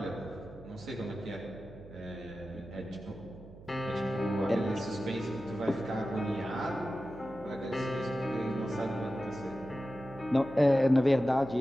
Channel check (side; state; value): right; noise; hum, 18 dB below the sound